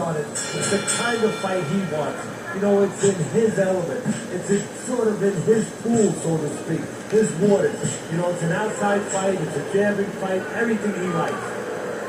it. It's the kind of fight he wants. You know, it's in his element. Sort of in his pool, so to speak. His waters. You know, it's an outside fight. It's a jabbing fight. Everything he likes.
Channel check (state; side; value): identical; both; correlation 1.00